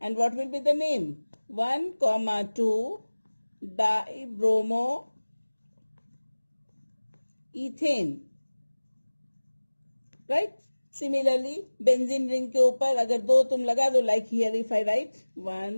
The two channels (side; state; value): both; inverted; correlation -1.00